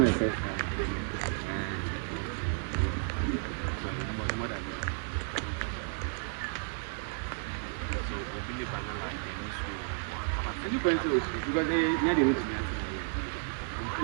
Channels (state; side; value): silent; left; 56 dB below the other